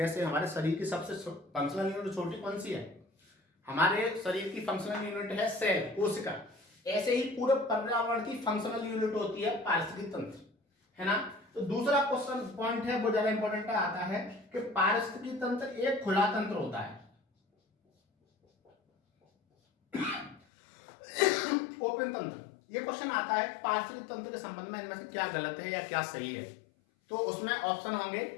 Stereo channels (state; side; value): drops out; right; at 20.4 s